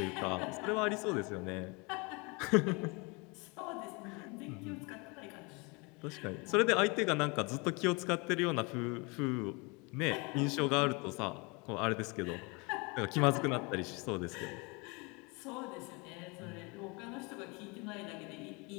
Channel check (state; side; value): quieter; right; 28.9 dB